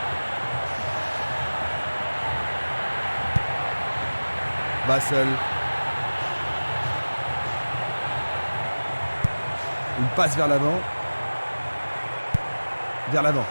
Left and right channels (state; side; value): inverted; both; correlation -1.00